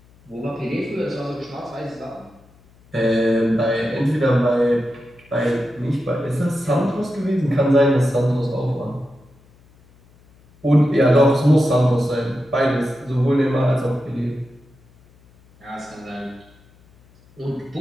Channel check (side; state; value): left; noise; hum, 29 dB below the sound